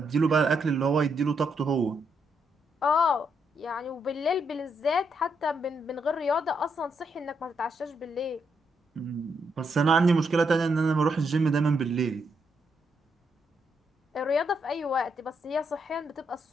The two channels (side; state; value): both; normal; correlation 0.78